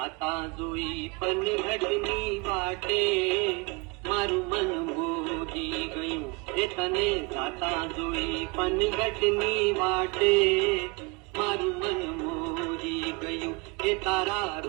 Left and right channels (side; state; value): left; quieter; 28.0 dB